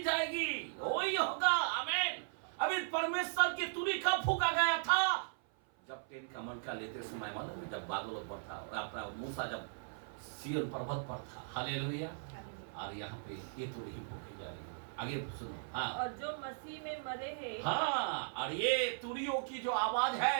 जाएगी। वही होगा। आमीन। अभी परमेश्वर की तुरही कब फूका गया था? जब 10 कमांड का लेते समय, मालूम है, जब बादलों पर था, अपना मूसा जब सिय्योन पर्वत पर था। हालेलुया। और यहाँ पे ये तुरही फूकी जाएगी। आगे सुनो। हाँ, और जो मसीह में मरे हैं, हाँ, और ये तुरियों की जो आवाज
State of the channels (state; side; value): silent; left; 53 dB below the other